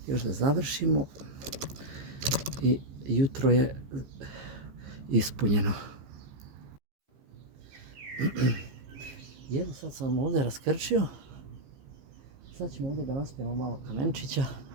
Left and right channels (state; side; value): late; left; 15 ms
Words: još da završimo i jutro je ispunjeno. I evo sad sam ovdje raskrčio. Sad ćemo ovdje da naspijemo malo kamenčića,